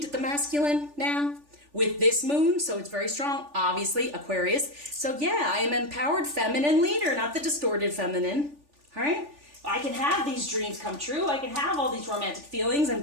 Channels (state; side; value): late; left; 3.4 ms